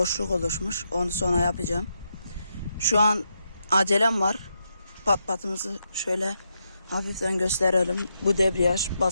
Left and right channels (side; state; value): both; inverted; correlation -0.83